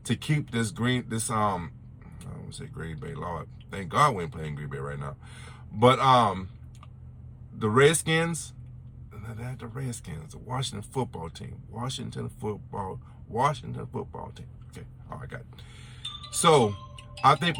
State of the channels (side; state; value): both; identical; correlation 1.00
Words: to keep this I don't want to say Green Bay, Lord. Thank God we ain't playing Green Bay right now. But the Redskins, the Washington football team. Washington football team. Okay, all right, got it. So I think